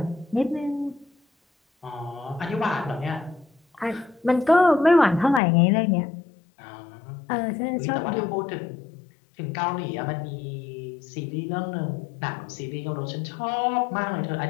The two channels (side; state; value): right; drops out; at 5.4 s